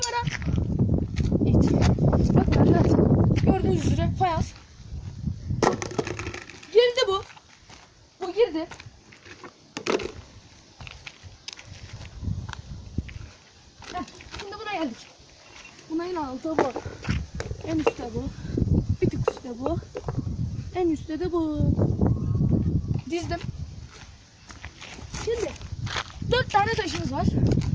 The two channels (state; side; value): identical; both; correlation 1.00